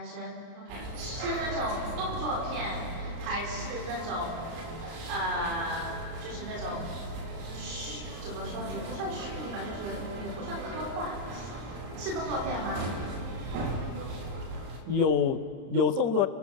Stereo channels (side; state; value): left; late; 33 ms